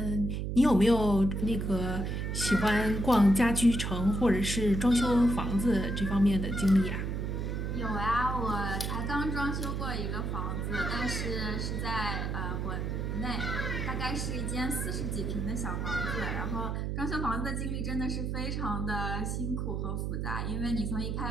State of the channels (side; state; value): right; noise; hum, 2 dB below the sound